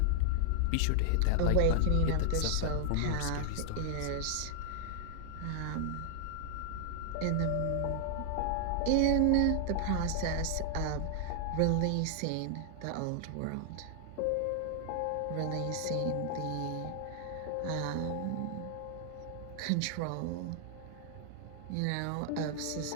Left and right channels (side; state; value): both; different; correlation 0.00